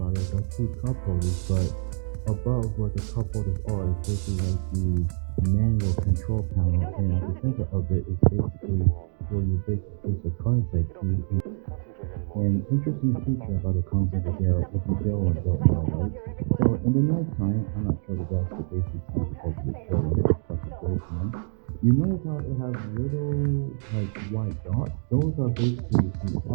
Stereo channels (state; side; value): silent; left; digital silence